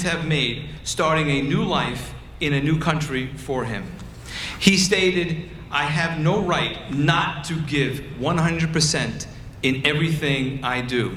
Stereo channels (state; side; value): identical; both; correlation 1.00